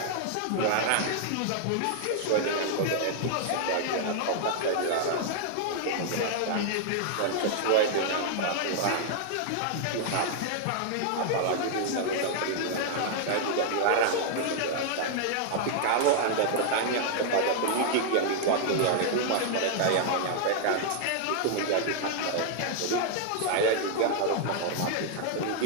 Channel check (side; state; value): both; different; correlation 0.00